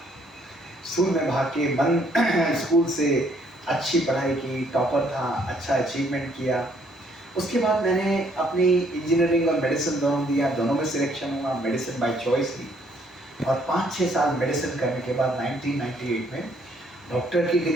स्कूल में भाग के मन स्कूल से अच्छी पढ़ाई की, टॉपर था, अच्छा अचीवमेंट किया। उसके बाद मैंने अपनी इंजीनियरिंग और मेडिसिन दोनों दिया, दोनों में सिलेक्शन हुआ, मेडिसिन बाय चॉइस ली। और 5-6 साल मेडिसिन करने के बाद 1998 में डॉक्टर की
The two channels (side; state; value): both; normal; correlation 0.66